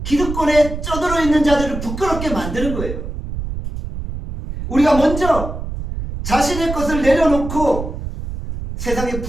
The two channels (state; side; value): noise; right; rumble, 7 dB below the sound